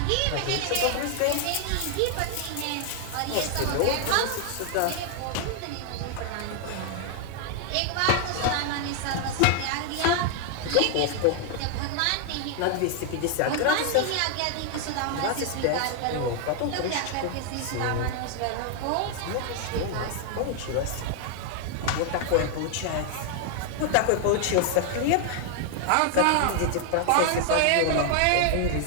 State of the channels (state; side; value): different; both; correlation 0.00